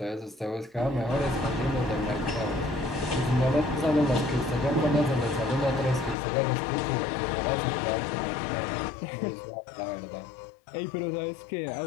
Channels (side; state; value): right; drops out; at 6.2 s